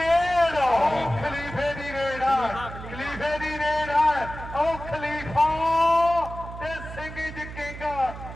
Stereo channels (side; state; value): right; noise; hum, 12 dB below the sound